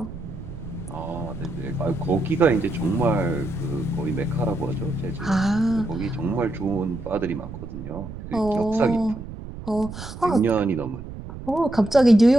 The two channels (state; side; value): noise; right; rumble, 11 dB below the sound